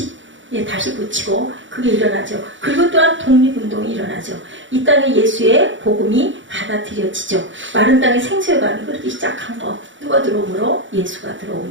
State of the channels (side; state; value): left; late; 0.55 ms